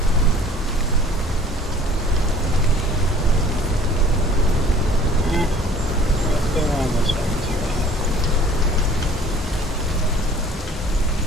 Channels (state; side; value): normal; both; correlation 0.51